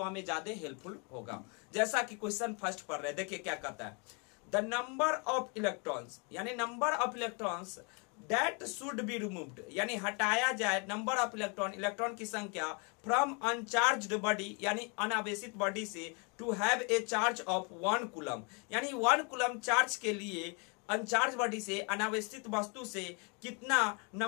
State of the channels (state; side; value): quieter; right; 34.2 dB